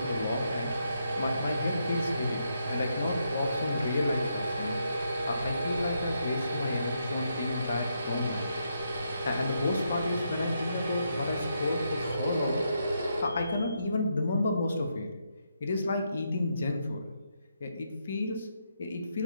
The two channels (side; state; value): both; inverted; correlation -0.79